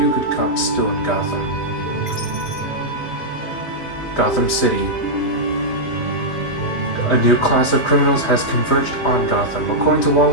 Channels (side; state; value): right; late; 2.7 ms